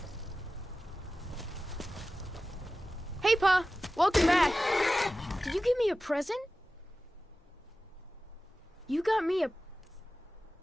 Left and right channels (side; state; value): both; normal; correlation 0.95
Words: Hey, Pa! Welcome back! Did you give me a present? You got me